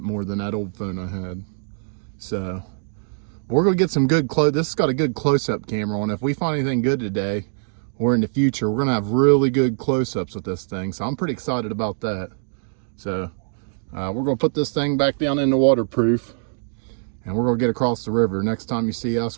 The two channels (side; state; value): left; silent; digital silence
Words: more than that old phone I had. So we're going to get some good close. This has got a good close-up camera on it. If we find anything good today or in the future, we're going to have really good close-ups with this thing. So I'm pretty excited about that. So we're going to put this thing back down in the waterproof, and we're going to get across the river. Next time you see